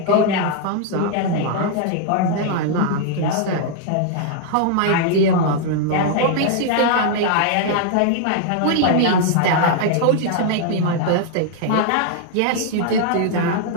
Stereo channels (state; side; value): different; both; correlation 0.00